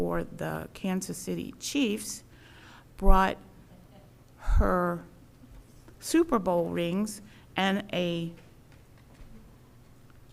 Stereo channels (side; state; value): both; identical; correlation 1.00